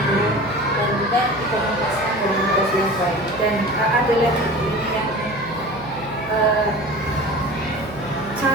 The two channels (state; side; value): noise; right; hum, 16 dB below the sound